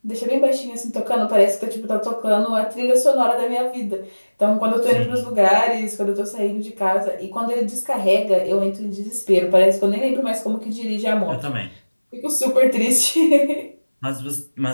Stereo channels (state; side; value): inverted; both; correlation -1.00